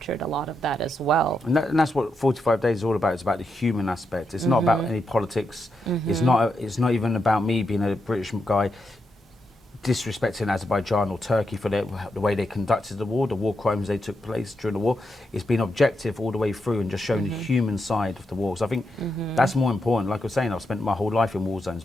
a lot of that as well. And that's what 45 Days is all about. It's about the human aspect. It's not about any politics. It's not even about me being a British guy disrespecting Azerbaijan or Turkey for the way they conducted the war crimes they took place during the war. It's been objective all the way through and just showing the human side of the war. So I think that's more important. Like I was saying, I've spent my whole life in war zones,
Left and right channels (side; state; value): both; normal; correlation 0.84